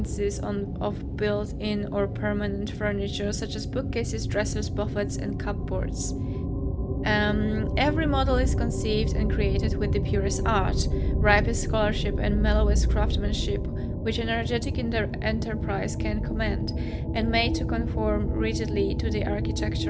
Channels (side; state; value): both; identical; correlation 1.00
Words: of built-in or permanent furniture, such as bookcases, dressers, buffets, and cupboards. Every model is conceived and created with the purest art, ripest scholarship, and mellowest craftsmanship, which an energetic enterprise can command, and made to conform rigidly to the